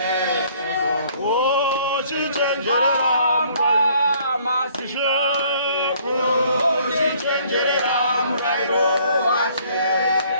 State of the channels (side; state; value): both; inverted; correlation -0.60